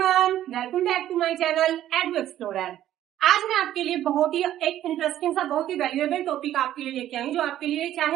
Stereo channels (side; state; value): left; quieter; 12.4 dB